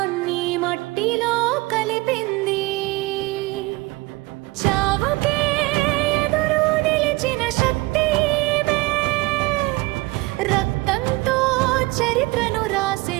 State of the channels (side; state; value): left; quieter; 22.2 dB